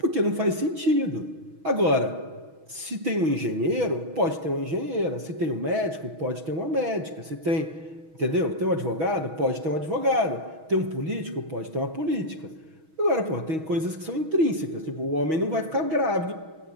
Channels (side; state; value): left; late; 6.3 ms